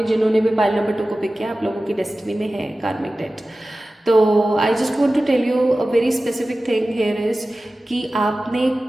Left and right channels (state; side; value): normal; both; correlation 0.96